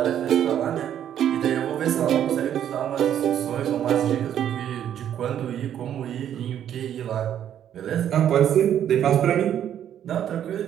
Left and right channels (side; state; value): left; quieter; 10.1 dB